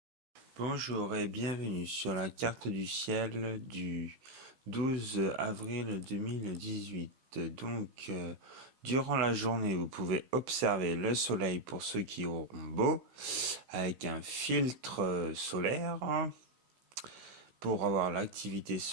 Bonjour et bienvenue sur la carte du ciel du 12 avril 2018. Donc, durant la journée, vous pouvez observer le soleil pour ceux qui auront beau, avec un filtre solaire pour avoir l'activité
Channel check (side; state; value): left; late; 16 ms